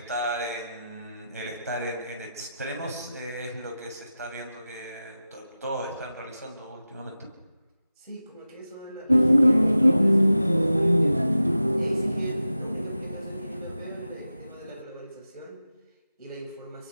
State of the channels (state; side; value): inverted; both; correlation -0.94